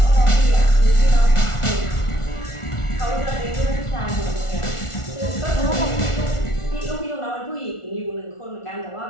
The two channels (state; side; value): late; right; 1.4 ms